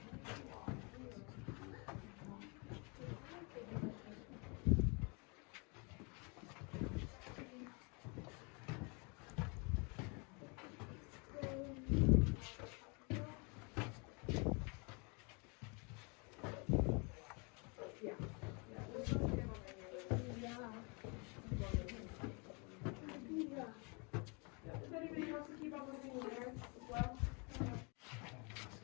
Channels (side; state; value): right; quieter; 32.6 dB